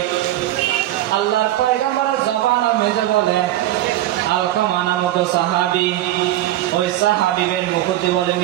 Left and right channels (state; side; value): quieter; left; 14.3 dB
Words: আল্লাহর পয়গম্বরের জবানের মেজে বলে আলকামা নামক সাহাবী, ওই সাহাবীদের মুকুদ্দি বলে